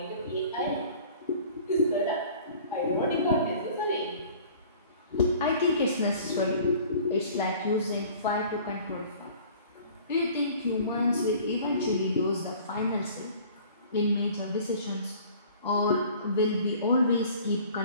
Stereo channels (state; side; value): inverted; both; correlation -0.48